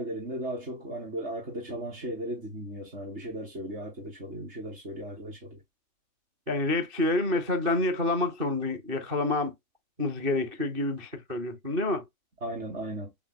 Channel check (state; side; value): late; left; 2.7 ms